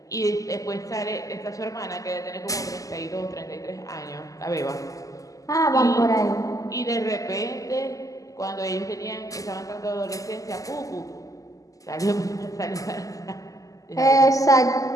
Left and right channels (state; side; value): late; right; 0.17 ms